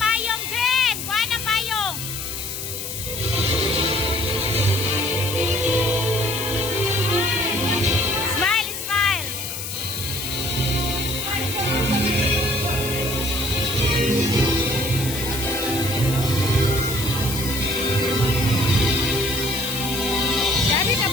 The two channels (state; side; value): noise; left; hiss, 6 dB below the sound